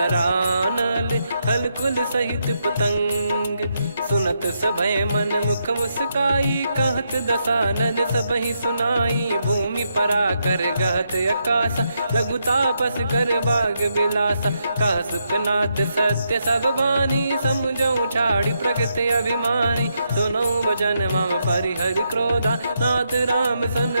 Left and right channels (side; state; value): both; inverted; correlation -0.81